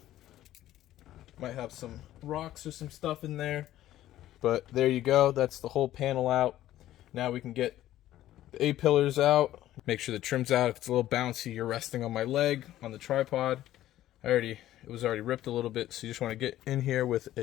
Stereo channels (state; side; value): quieter; right; 13.7 dB